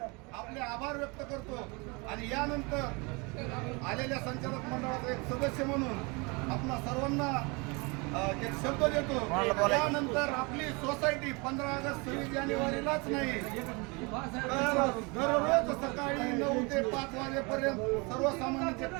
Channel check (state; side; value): quieter; left; 28.7 dB